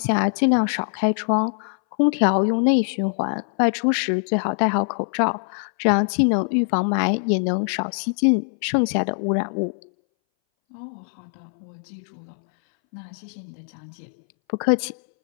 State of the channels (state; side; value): silent; right; 62 dB below the other